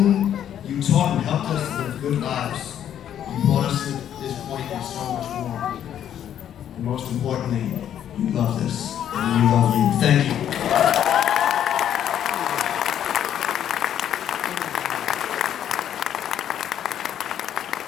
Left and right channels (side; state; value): right; quieter; 10.1 dB